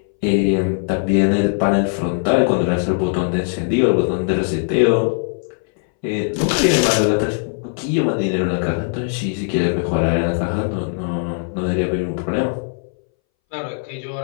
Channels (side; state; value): right; silent; 63 dB below the other